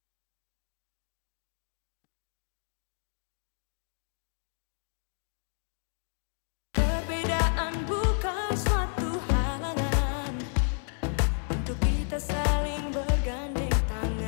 Perbedaan bukan suatu halangan untuk kita saling bergandeng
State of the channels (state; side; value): silent; right; 57 dB below the other